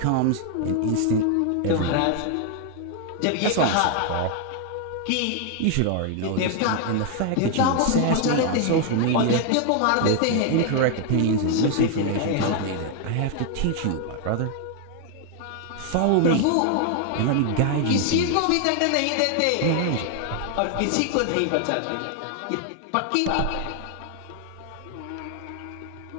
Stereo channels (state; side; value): different; both; correlation 0.00